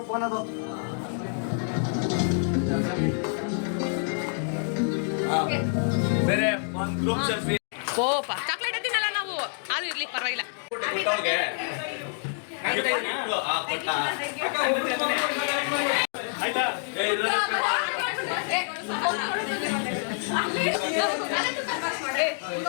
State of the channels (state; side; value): silent; right; 60 dB below the other